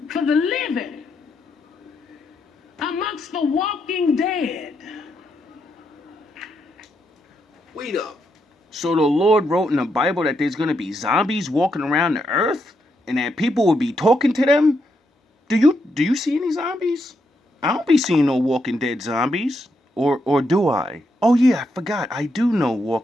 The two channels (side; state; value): both; normal; correlation 0.80